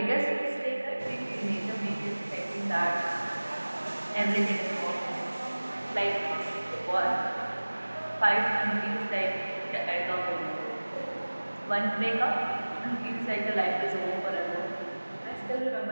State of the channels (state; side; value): inverted; both; correlation -1.00